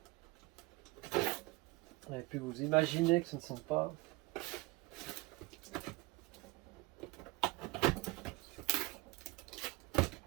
et puis vous imaginez que ce ne sont pas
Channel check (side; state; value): left; quieter; 22.5 dB